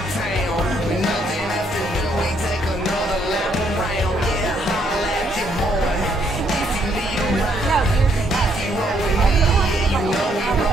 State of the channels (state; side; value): normal; both; correlation 0.71